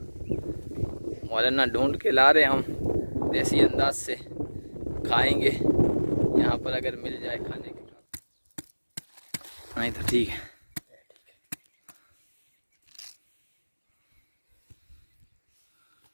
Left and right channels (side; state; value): both; inverted; correlation -1.00